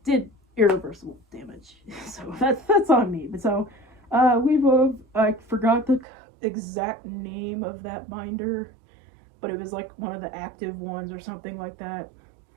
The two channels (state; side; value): drops out; left; at 6.1 s